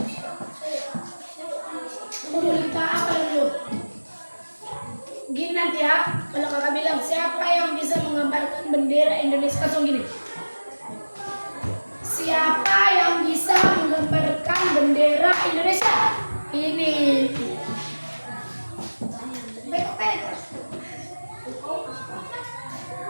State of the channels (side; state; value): both; inverted; correlation -1.00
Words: Udah kita apa dulu? Gini nanti ya, kalau kakak bilang siapa yang bisa menggambarkan bendera Indonesia, langsung gini. Siapa yang bisa menggambarkan bendera Indonesia? Ini.